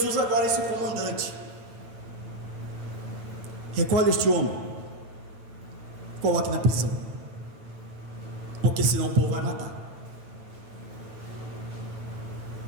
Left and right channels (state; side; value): late; left; 9.0 ms